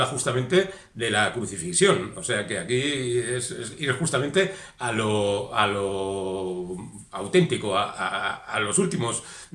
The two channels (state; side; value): identical; both; correlation 1.00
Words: justamente de la crucifixión. O sea que aquí es ir justamente a lo auténtico, a los últimos